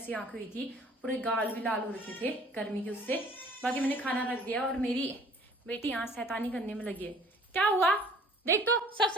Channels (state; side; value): normal; both; correlation 0.53